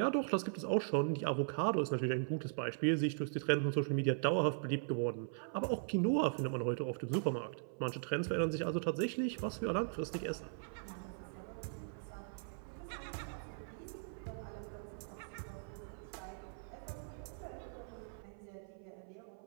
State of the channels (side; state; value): left; silent; 51 dB below the other